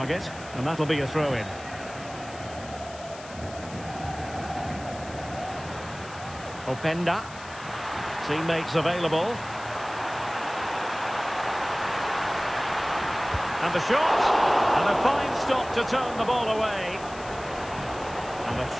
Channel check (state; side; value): noise; left; hiss, 17 dB below the sound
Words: and that'll be a throw-in. Openda. Teammates available. And the shot. And a fine stop to turn the ball away. And a